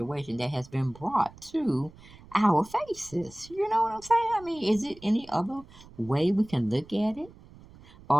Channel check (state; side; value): noise; right; rumble, 22 dB below the sound